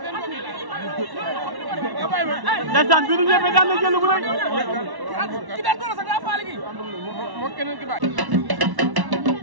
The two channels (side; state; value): left; late; 1.1 ms